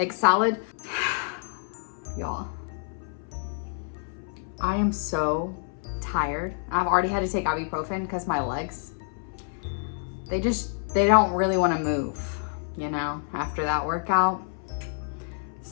salad. Y'all, I am so tired. I've already had to take ibuprofen because my legs, they don't really want to move, you know, after that workout.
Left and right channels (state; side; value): silent; right; 60 dB below the other